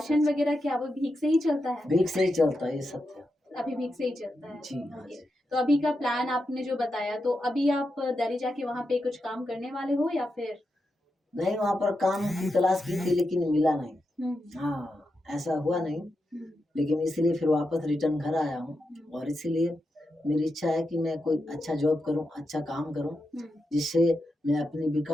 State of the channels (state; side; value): normal; both; correlation 0.87